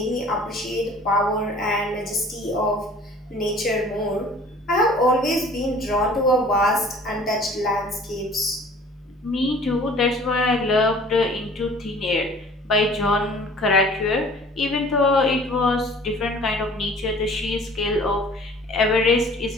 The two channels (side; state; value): both; normal; correlation 0.49